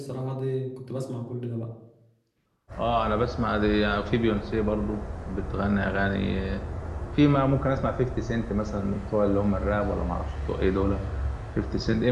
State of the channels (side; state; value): both; identical; correlation 1.00